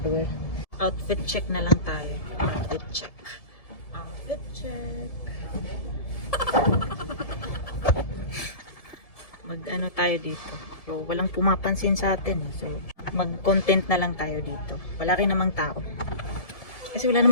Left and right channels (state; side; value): late; right; 1.7 ms